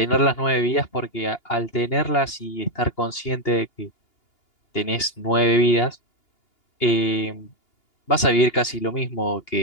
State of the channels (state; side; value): late; right; 2.8 ms